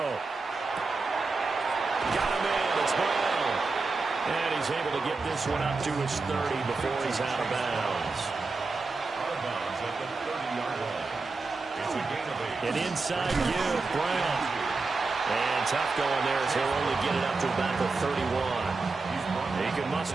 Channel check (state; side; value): quieter; left; 3.9 dB